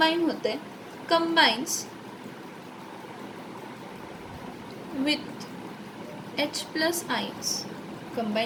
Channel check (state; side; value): identical; both; correlation 1.00